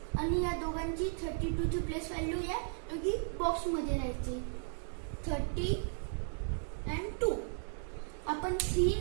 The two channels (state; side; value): silent; left; 54 dB below the other